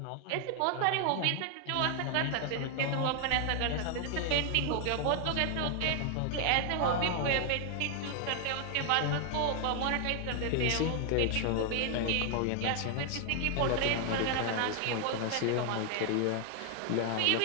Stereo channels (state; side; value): different; both; correlation 0.00